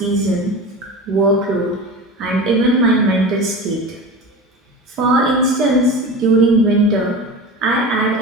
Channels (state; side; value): normal; both; correlation 0.31